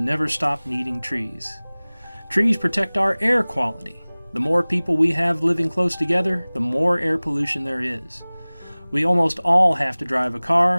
stopped needing trees. Trees protect our air quality. The more people we have living close together, the more air pollution there is. We almost all have to drive a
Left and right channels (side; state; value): both; inverted; correlation -1.00